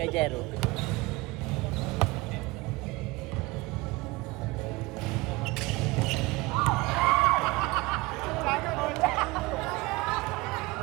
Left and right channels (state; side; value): quieter; left; 22.4 dB